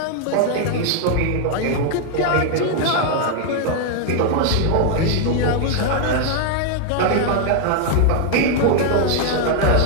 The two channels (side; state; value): both; different; correlation 0.00